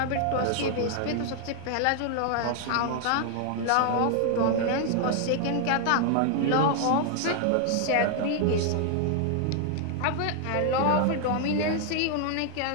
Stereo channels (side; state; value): both; different; correlation 0.00